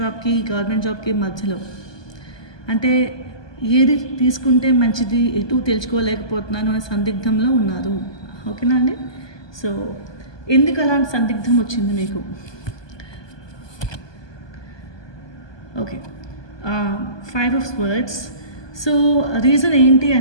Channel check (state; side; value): late; right; 1.2 ms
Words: గవర్నమెంట్ జాబ్కి మధ్యలో. అంటే ఏది తీసుకుంటే మంచిది, ఎటు తెలుసుకోలేకపోతున్నాను అనే సందిగ్ధంలో ఉన్నారు. ఓకేనా అండి. సో ఎందుకు అలాంటి సందిగ్ధం వచ్చింది మీకు? Okay, 5 of Swords. So reason ఏంటి